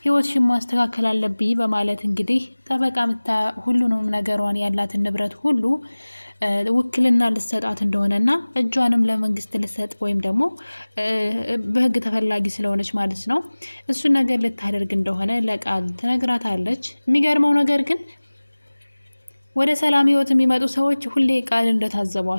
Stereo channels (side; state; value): both; inverted; correlation -1.00